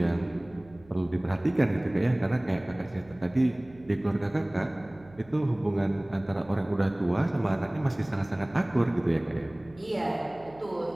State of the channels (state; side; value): noise; right; hum, 24 dB below the sound